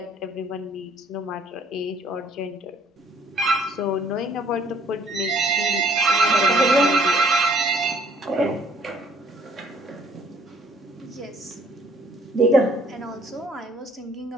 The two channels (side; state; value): both; normal; correlation 0.61